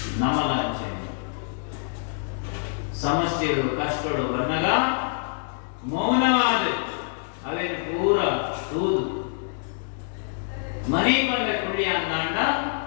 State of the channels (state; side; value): silent; right; digital silence